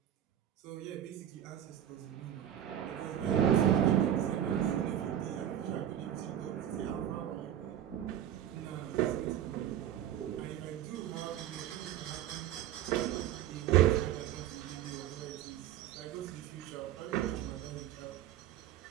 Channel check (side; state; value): left; quieter; 11.0 dB